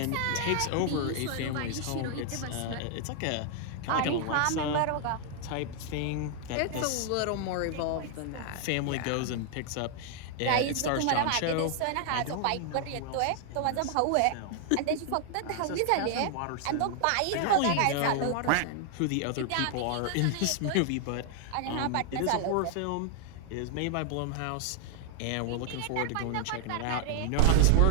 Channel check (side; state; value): both; different; correlation 0.00